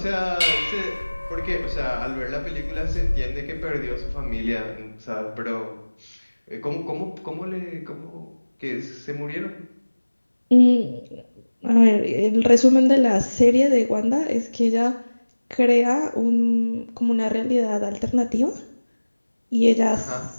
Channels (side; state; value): both; inverted; correlation -1.00